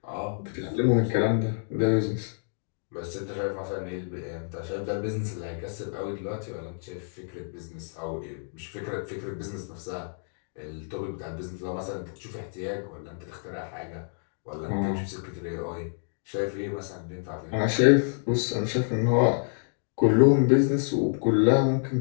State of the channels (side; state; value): right; silent; digital silence